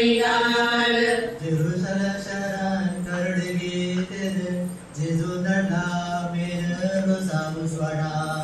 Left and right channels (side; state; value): both; identical; correlation 1.00